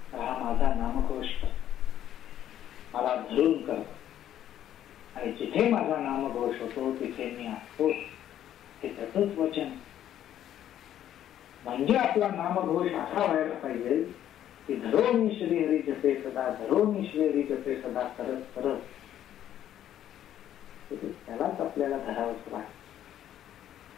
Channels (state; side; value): quieter; right; 11.3 dB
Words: हा माझा नामघोष मला धरून करतो, आणि जिथे माझा नामघोष होतो तिथे मी असतो, हे त्याचंच वचन. म्हणजे आपला नामघोष असा व्हायला पाहिजे की धरोनी श्रीहरी जपे सदा, धरोनी श्रीहरी जपे सदा करत करत त्यालाच आपल्याला धरावंच वाटतं.